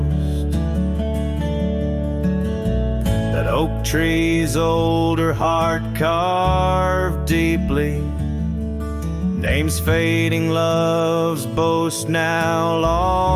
That oak tree's older heart carved deeply, names fading, love's boast now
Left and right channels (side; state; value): both; identical; correlation 1.00